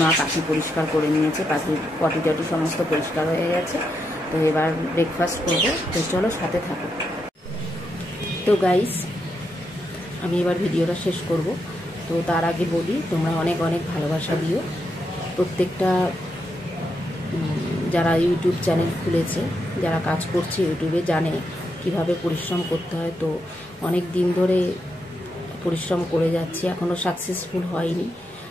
মা পাখি পরিষ্কার করে নিয়েছে, পাখির পটি টটি সমস্ত পরিষ্কার হয়ে গেছে। তো এবার ব্রেকফাস্ট করবো, তো চলো সাথে থাকো। তো গাইস আমি এবার ভিডিওটা শেষ করব। তো তার আগে বলি, তোমরা অনেক অনেক ভালোবাসা দিও। প্রত্যেকটা যারা ইউটিউব চ্যানেল খুলেছে, যারা কাজ করছে ইউটিউবে, জানে কিভাবে পরিশ্রম করতে হয়। তো অনেক দিন ধরে পরিশ্রম করে যাচ্ছি, এখনও সাকসেসফুল হয়নি।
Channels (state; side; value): normal; both; correlation 0.83